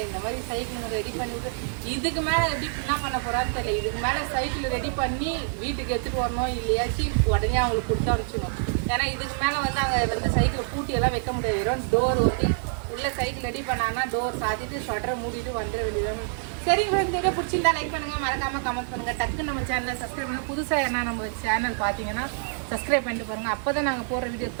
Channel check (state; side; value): silent; left; 61 dB below the other